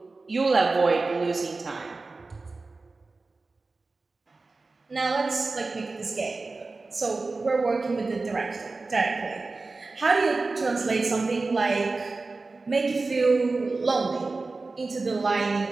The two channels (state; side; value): quieter; left; 3.7 dB